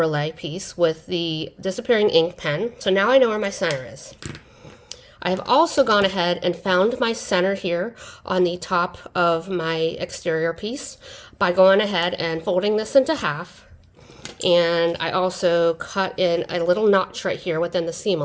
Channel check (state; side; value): identical; both; correlation 1.00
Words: piece with the disappearing ink pen. So now I know where my center is. I have also gone ahead and found my center here on the top of my exterior piece by going ahead and folding this into half. And I also cut in a little notch right here within the seam